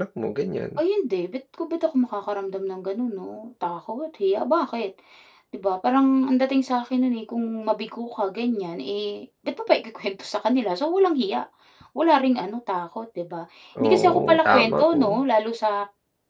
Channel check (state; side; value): identical; both; correlation 1.00